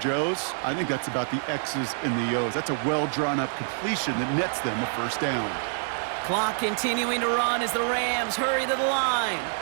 I think that's about the X's and the O's. That's a well-drawn-up completion that nets them a first down. Clock continuing to run as the Rams hurry to the line.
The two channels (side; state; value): left; silent; 60 dB below the other